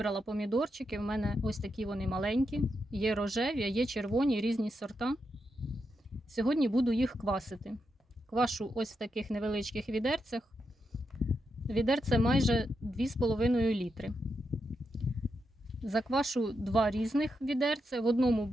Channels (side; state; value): both; normal; correlation 0.85